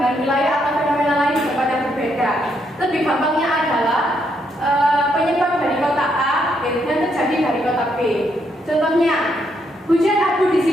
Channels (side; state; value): both; normal; correlation 0.76